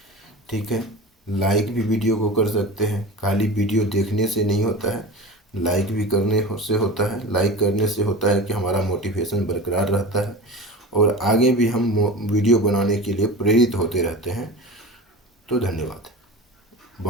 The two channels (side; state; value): both; normal; correlation 0.32